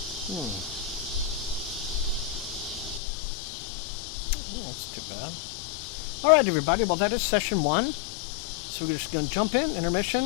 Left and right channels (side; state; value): right; drops out; at 3.0 s